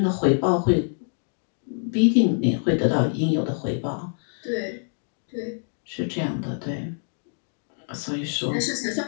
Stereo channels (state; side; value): silent; right; digital silence